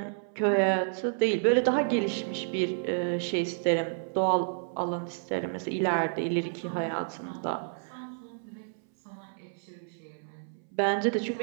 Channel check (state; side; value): silent; left; 58 dB below the other